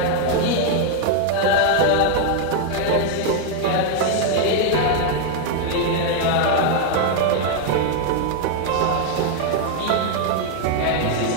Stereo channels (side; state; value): both; different; correlation 0.00